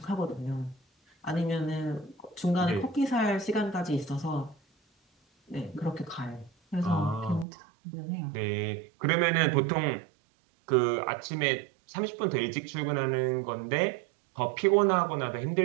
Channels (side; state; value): left; drops out; at 7.5 s